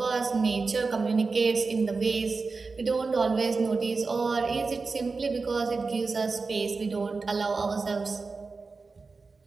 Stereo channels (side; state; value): left; quieter; 4.2 dB